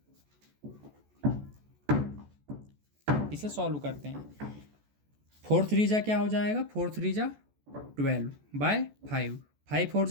इसे सॉल्व करते हैं। 4 3 जा क्या हो जाएगा 4 3 जा 12/5। 5 4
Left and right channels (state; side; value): late; left; 14 ms